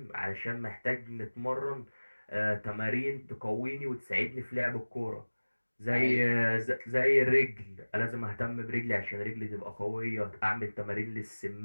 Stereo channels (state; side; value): inverted; both; correlation -1.00